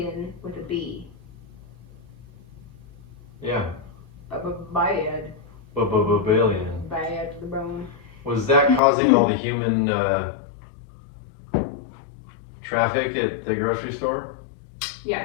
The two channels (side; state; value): right; drops out; at 8.8 s